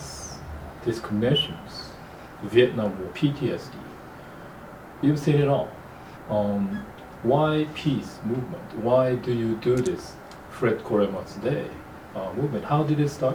discriminations, Vietnam War, PTSD. You've seen it all. Why peace movement? Why do you do this Fred Korema's Day movement? How did it start?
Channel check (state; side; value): identical; both; correlation 1.00